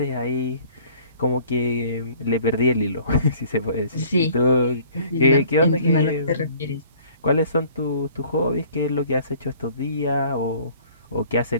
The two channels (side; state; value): both; inverted; correlation -0.53